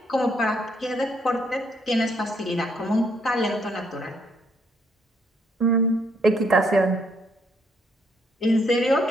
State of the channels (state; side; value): normal; both; correlation 0.70